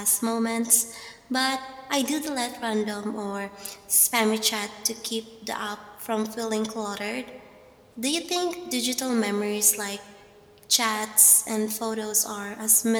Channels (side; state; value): both; identical; correlation 1.00